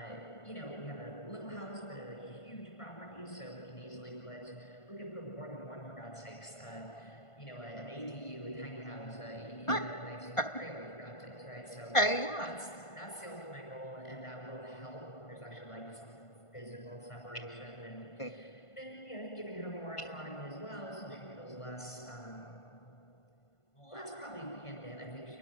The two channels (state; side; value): late; right; 1.5 ms